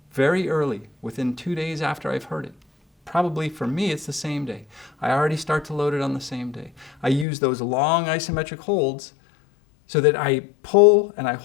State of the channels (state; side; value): drops out; right; at 7.2 s